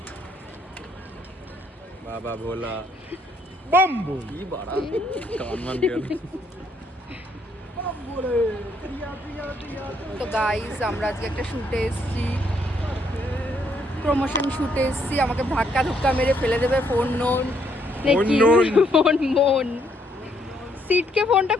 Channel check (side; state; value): both; normal; correlation 0.71